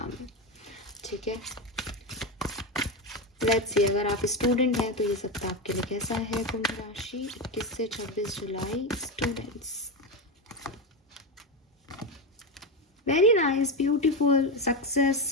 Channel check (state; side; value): normal; both; correlation 0.14